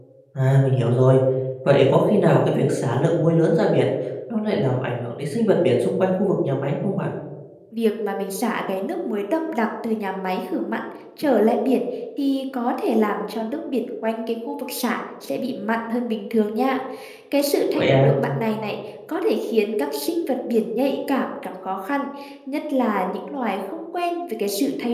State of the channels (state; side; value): identical; both; correlation 1.00